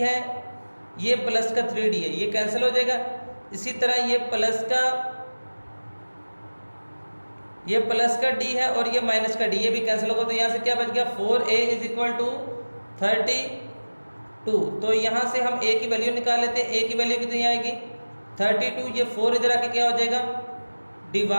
है, ये प्लस का 3d है, ये कैंसिल हो जाएगा। इसी तरह ये प्लस का d है और ये माइनस का d, ये भी कैंसिल होगा। तो यहाँ से क्या बच गया, 4a इज इक्वल टू 32। तो यहाँ से हम a की वैल्यू निकाल लेते हैं। a की वैल्यू कितनी आएगी, 32, ये 4 इधर आके क्या हो जाएगा,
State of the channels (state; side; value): inverted; both; correlation -1.00